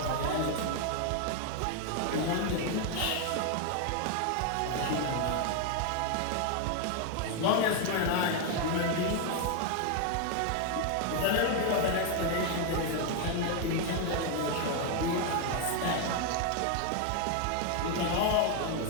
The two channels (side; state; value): both; different; correlation 0.01